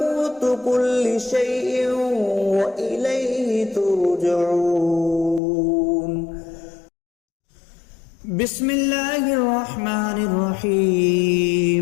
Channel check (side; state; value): right; drops out; at 5.4 s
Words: كل شيء وإليه ترجعون بسم الله الرحمن